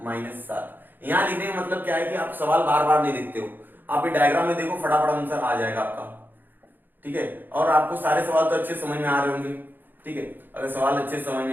-7। यहाँ लिखने का मतलब क्या है कि आप सवाल बार बार नहीं लिखते हो, आप ये डायग्राम में देखो, फटाफट आंसर आ जाएगा आपका। ठीक है, और आपको सारे सवाल तो अच्छे समझ में आ रहे होंगे। ठीक है, अगर सवाल अच्छे समझ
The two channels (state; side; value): late; left; 0.091 ms